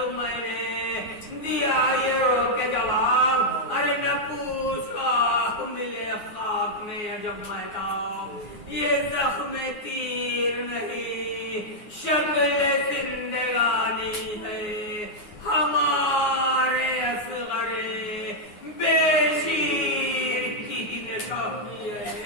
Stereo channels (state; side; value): late; right; 9.6 ms